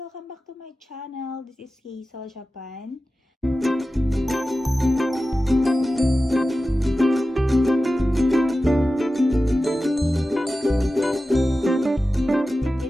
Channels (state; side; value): normal; both; correlation 0.94